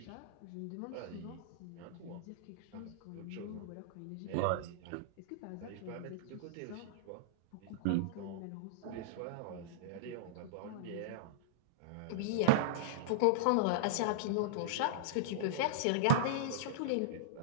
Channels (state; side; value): different; both; correlation -0.02